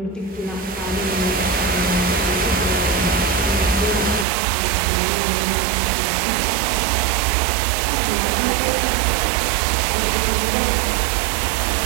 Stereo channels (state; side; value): drops out; left; at 4.2 s